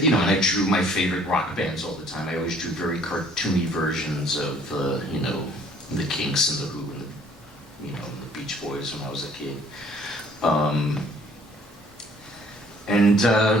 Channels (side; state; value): both; normal; correlation 0.58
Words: you know, and I drew my favorite rock bands all the time. I always drew very cartoony versions of, you know, the Kinks and the Who and the, you know, the Beach Boys when I was a kid.